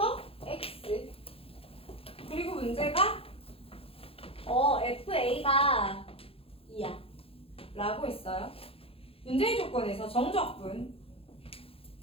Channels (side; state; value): right; late; 0.27 ms